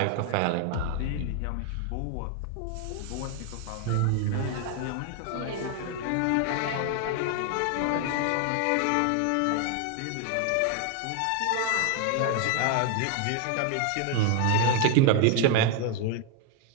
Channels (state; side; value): different; both; correlation 0.01